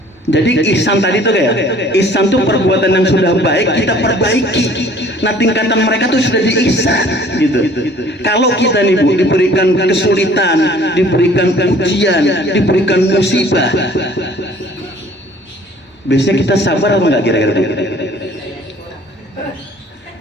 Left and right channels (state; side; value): normal; both; correlation 0.53